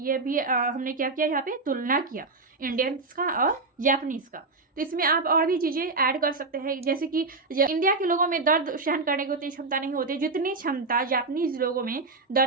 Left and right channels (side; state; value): left; quieter; 3.7 dB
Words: भी हमने क्या किया, यहाँ पे तुलना किया इंडियंस का और जापानीज का। तो इसमें आप और भी चीज़ें ऐड कर सकते हैं, जैसे कि इंडिया के लोगों में दर्द सहन करने की उतनी क्षमता नहीं होती जितनी क्षमता जापानीज लोगों में